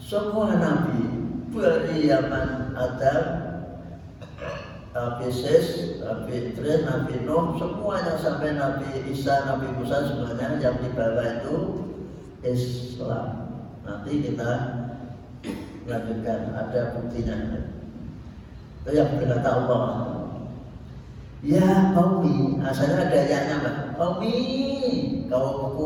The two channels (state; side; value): identical; both; correlation 1.00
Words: Nabi dari zaman Adam, Nabi Yesus, Nabi Idris, Nabi Nuh, semuanya sampai Nabi Isa, Nabi Musa, semuanya yang dibawa itu Islam. Nanti kita lanjutkan, ada buktinya. Itu yang berkata Allah, ya qaumi, asalnya ada ya-nya Pak. Qaumi,